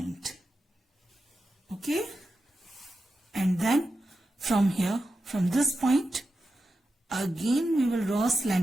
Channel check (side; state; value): both; normal; correlation 0.91